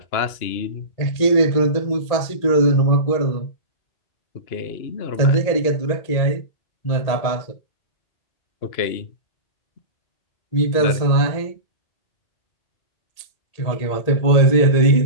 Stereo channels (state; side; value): late; right; 1.8 ms